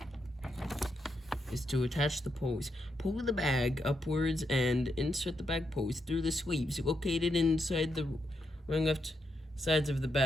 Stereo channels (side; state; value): both; normal; correlation 0.82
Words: is to attach the pose. Pull the bag upwards and insert the bag pose through the sleeves located inside the left sides of the